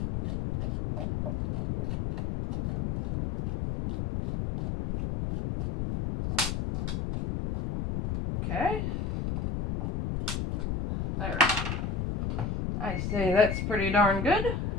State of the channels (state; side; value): noise; left; rumble, 2 dB below the sound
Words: Okay. There. I say that's pretty darn good.